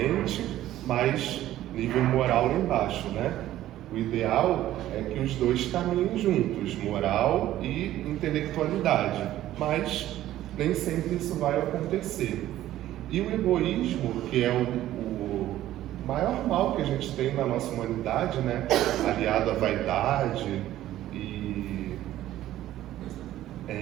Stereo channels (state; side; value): quieter; left; 13.7 dB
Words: mas nível moral lá embaixo, né? O ideal é que os dois caminhem juntos, moral e intelectualidade, mas nem sempre isso vai acontecer. E o egoísmo, que é o maior mal que a gente tem na nossa humanidade, né? Aliado à vaidade e